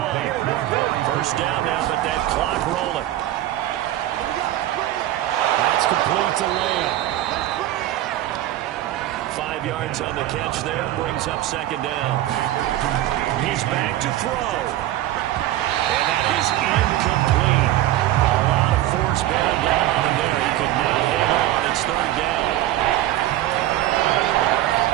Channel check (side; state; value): left; quieter; 14.1 dB